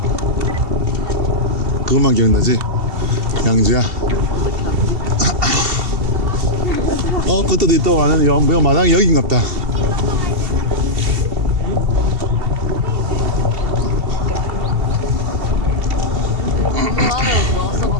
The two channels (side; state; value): left; late; 2.7 ms